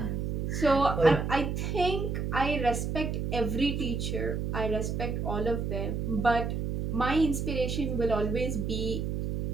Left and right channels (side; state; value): right; noise; hum, 1 dB below the sound